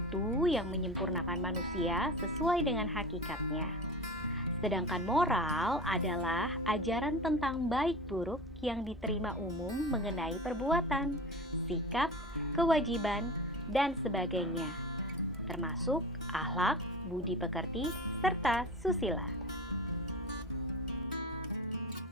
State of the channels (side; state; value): both; normal; correlation 0.32